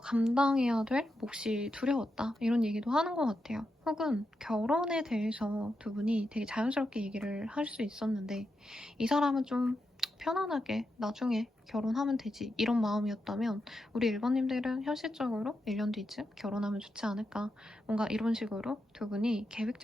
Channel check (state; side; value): normal; both; correlation 0.86